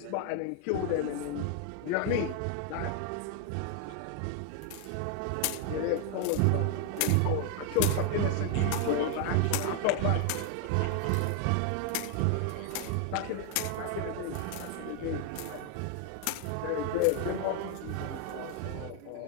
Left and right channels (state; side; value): different; both; correlation 0.00